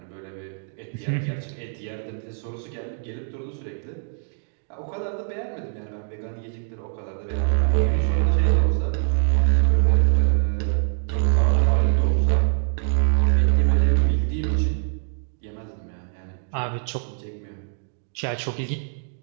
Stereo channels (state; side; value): silent; left; digital silence